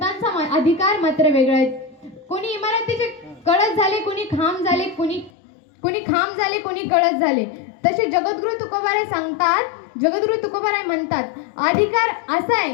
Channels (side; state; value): right; drops out; at 5.3 s